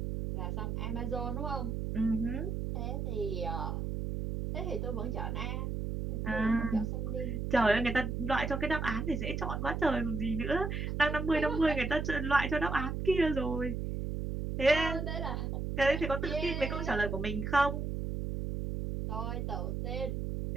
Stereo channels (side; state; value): right; noise; hum, 2 dB below the sound